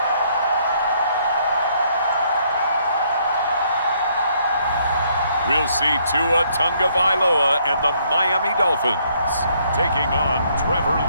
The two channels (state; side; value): inverted; both; correlation -0.68